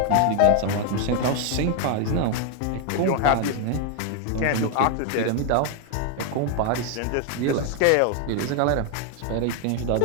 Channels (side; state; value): both; different; correlation 0.01